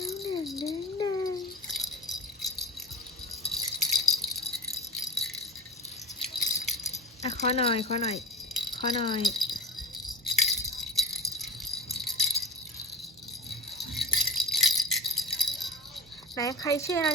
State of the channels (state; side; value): normal; both; correlation 0.30